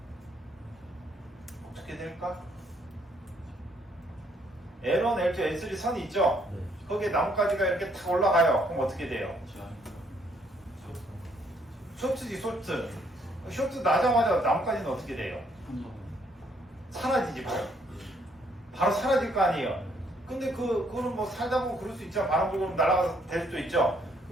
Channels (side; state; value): both; normal; correlation 0.68